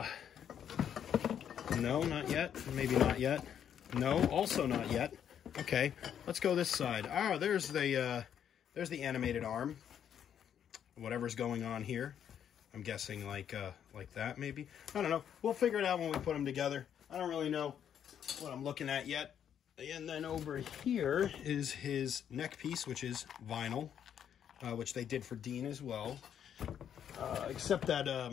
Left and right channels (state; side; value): quieter; right; 9.0 dB